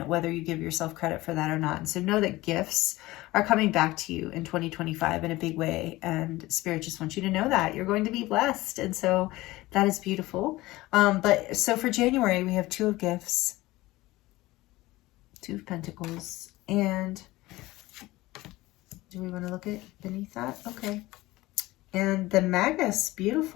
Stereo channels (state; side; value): quieter; right; 18.9 dB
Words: whether you give yourself credit for that or not. And so know that gifts are coming back to you in 2025 in a big way. And Spirit just wants you to know that you're going to be blessed. And so that is beautiful. But so for January, we have 2 of Gifts, 2 of Pentacles, and do we want to look at beneath that? Okay. And the Magus,